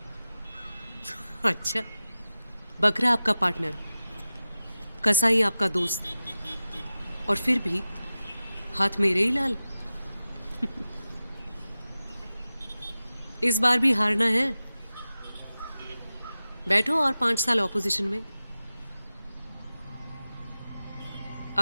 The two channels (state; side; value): inverted; both; correlation -0.94